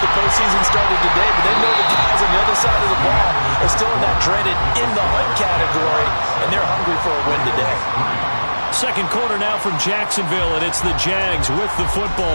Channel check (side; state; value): both; inverted; correlation -1.00